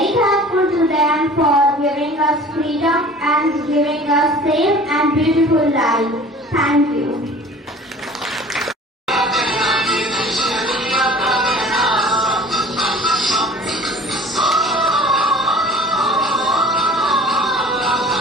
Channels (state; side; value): normal; both; correlation 0.45